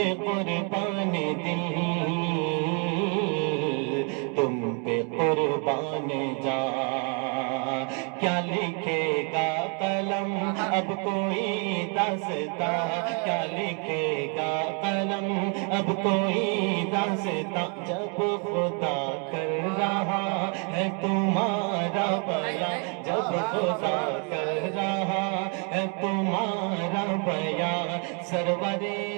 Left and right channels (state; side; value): quieter; left; 36.9 dB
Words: قربان دل، تم پہ قربان جان۔ کیا لکھے گا قلم اب کوئی داستاں، کیا لکھے گا قلم اب کوئی داستاں، جب خدا کر رہا ہے تمہارا بیان، جب خدا کر رہا ہے تمہارا بیان، سرورے